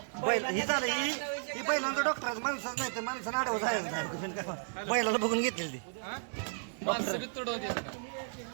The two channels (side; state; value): left; silent; digital silence